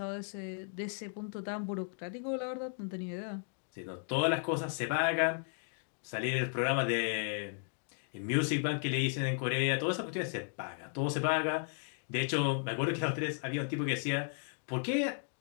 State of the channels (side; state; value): right; silent; 54 dB below the other